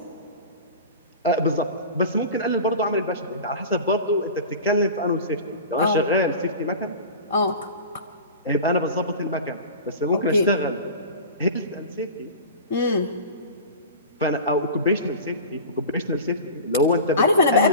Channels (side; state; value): both; inverted; correlation -0.34